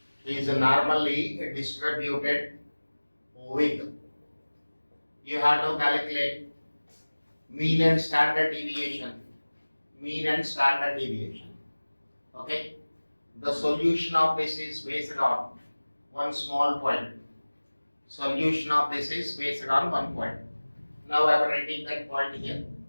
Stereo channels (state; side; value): inverted; both; correlation -1.00